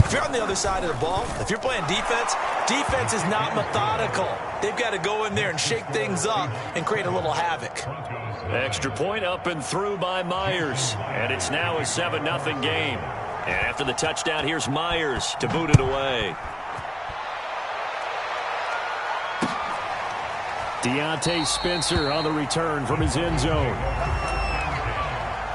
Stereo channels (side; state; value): both; identical; correlation 1.00